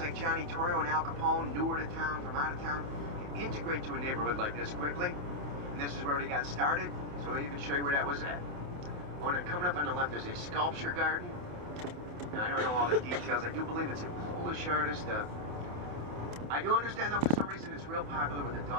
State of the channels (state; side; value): late; left; 27 ms